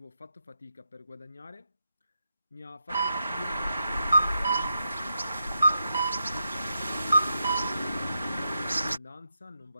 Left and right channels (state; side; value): inverted; both; correlation -0.85